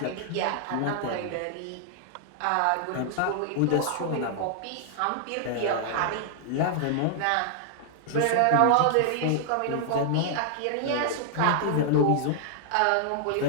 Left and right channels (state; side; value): different; both; correlation -0.01